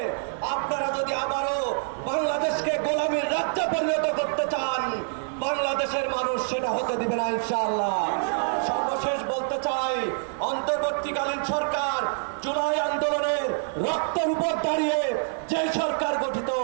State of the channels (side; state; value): left; silent; digital silence